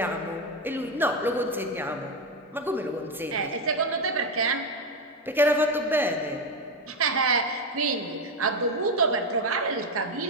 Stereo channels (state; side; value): normal; both; correlation 0.11